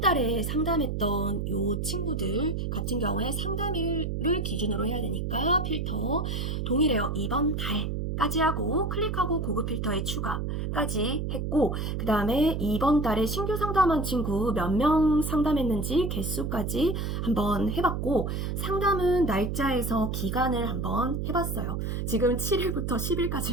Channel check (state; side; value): noise; right; hum, 2 dB below the sound